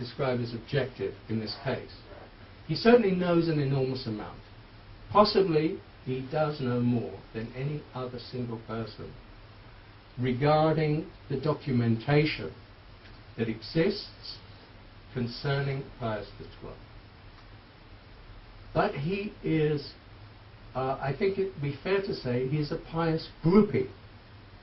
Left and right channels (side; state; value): both; identical; correlation 1.00